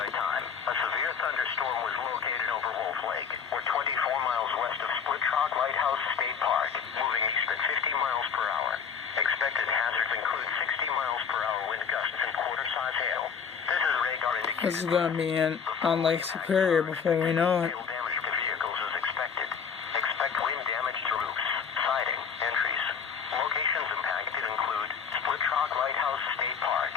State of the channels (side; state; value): right; quieter; 6.7 dB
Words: Time, a severe thunderstorm was located over Wolf Lake, or 24 miles west of Split Rock Lighthouse State Park, moving east at 50 miles per hour. Expected hazards include 60 miles per hour wind gusts and quarter-size hail. This is radar indicated. This is going to be on Lake Superior before we know it. Hail damage to vehicles is expected. Expect wind damage to roofs, siding, entries. Locations impacted include Split Rock Lighthouse State Park,